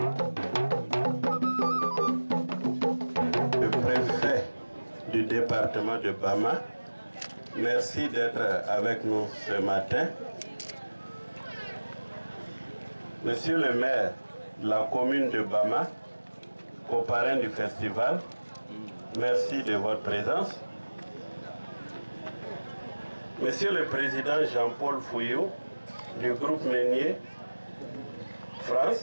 Le préfet du département de Bama, merci d'être avec nous ce matin. Monsieur le maire de la commune de Bama, coparrain du festival, merci de votre présence. Monsieur le président Jean-Paul Fouillou du groupe Meunier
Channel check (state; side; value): inverted; both; correlation -1.00